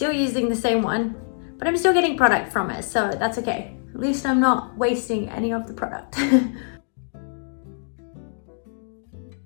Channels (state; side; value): silent; right; digital silence